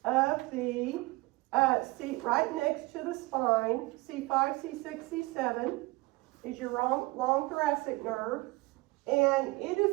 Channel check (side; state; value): left; quieter; 22.4 dB